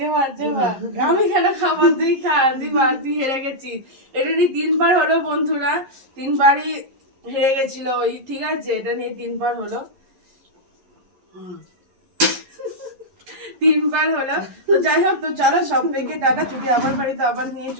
চেবা, আমি কেন খাবার? তুই খা, তুই হেরে গেছিস। এটা নিয়ে 3বার হলো বন্ধুরা, 3বারই হেরে গেছিল ওই, ঠিক আছে? এটা নিয়ে 3বার হলো, 3বার হলো। তো যাই হোক, তো চলো সবাইকে টাটা। যদি আমার বাড়িতে আবার নিয়ে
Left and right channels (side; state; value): left; late; 11 ms